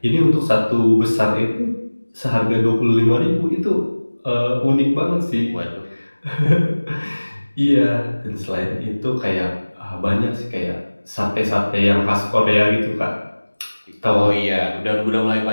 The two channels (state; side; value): inverted; both; correlation -1.00